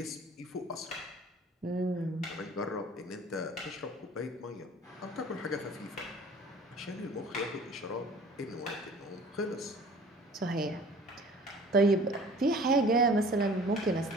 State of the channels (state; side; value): normal; both; correlation 0.47